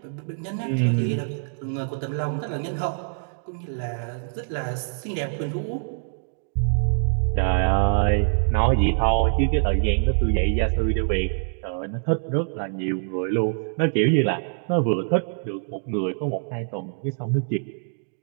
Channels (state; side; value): silent; left; digital silence